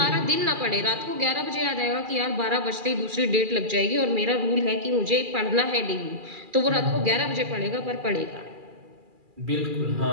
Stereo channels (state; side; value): late; left; 2.4 ms